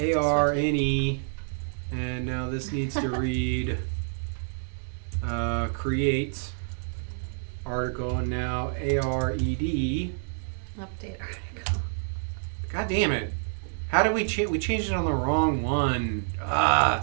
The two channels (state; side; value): silent; left; digital silence